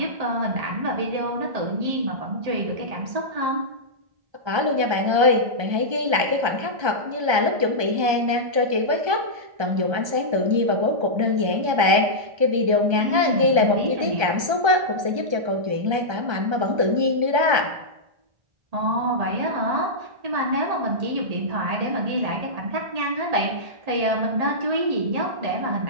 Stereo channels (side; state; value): left; late; 1.3 ms